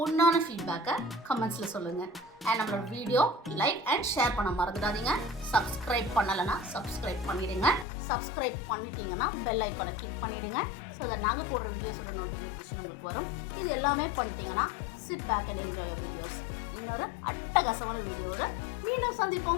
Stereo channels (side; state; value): right; drops out; at 7.9 s